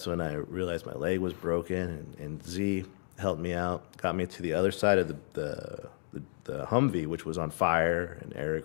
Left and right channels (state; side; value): silent; right; digital silence